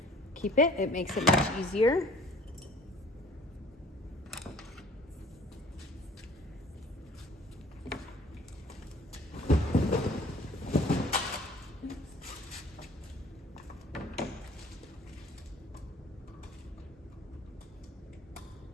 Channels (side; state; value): both; normal; correlation 0.52